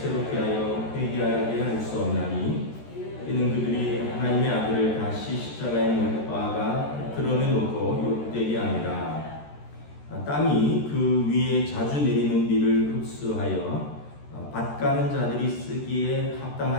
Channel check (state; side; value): late; right; 13 ms